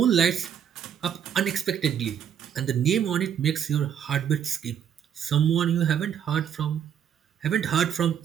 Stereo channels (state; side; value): quieter; left; 8.7 dB